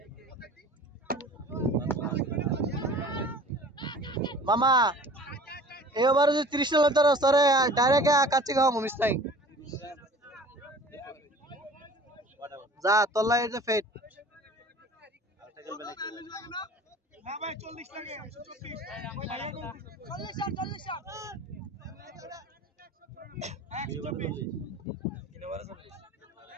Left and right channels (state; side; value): normal; both; correlation 0.45